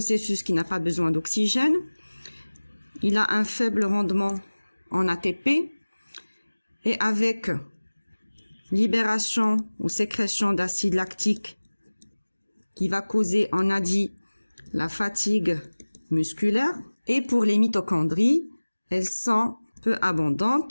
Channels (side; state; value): both; inverted; correlation -1.00